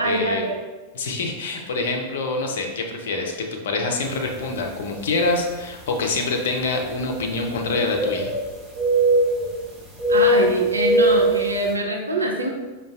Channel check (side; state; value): both; normal; correlation -0.10